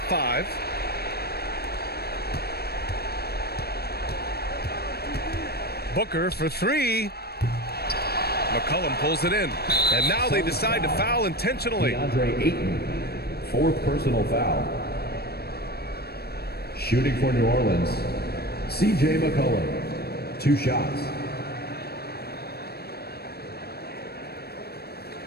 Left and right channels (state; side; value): late; right; 0.46 ms